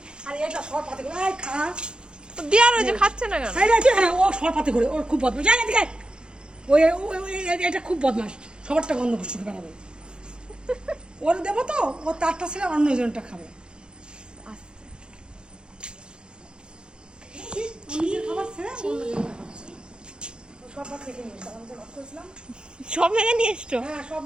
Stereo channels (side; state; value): left; late; 0.049 ms